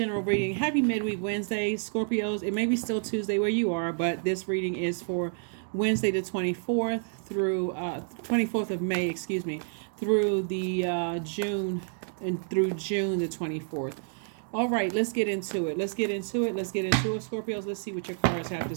reading. Happy midweek Wednesday, Scorpios. It may be still Tuesday where you are, but this reading is for Wednesday the 24th through 24th of May, through the June the 24th. All right, let's get into it. Scorpios. Let's see what your cards have to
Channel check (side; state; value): left; silent; 58 dB below the other